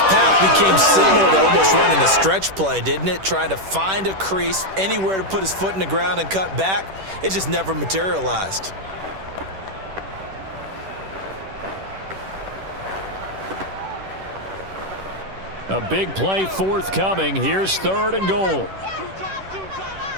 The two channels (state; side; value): late; left; 10 ms